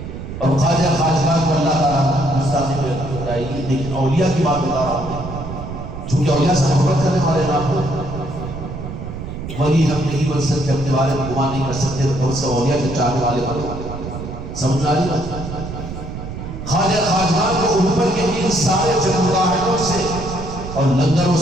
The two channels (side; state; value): right; noise; rumble, 9 dB below the sound